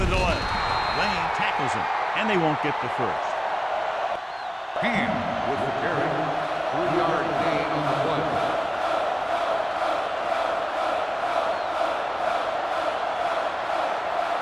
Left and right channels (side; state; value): both; identical; correlation 1.00